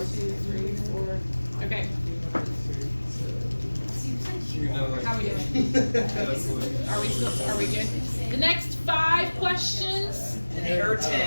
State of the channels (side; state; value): both; inverted; correlation -1.00